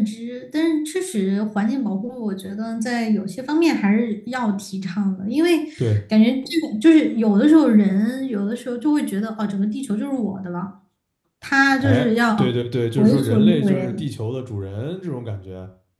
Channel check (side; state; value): both; identical; correlation 1.00